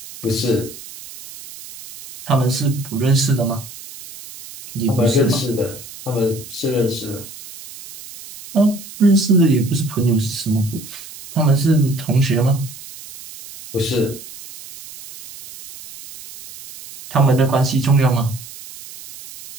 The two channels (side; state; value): right; noise; hiss, 16 dB below the sound